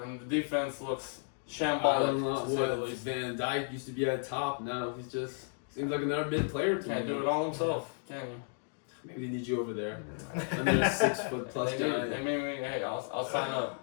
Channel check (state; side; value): silent; right; 55 dB below the other